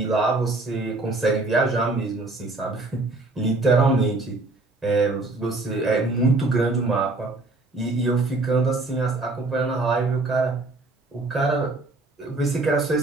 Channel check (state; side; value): quieter; left; 3.2 dB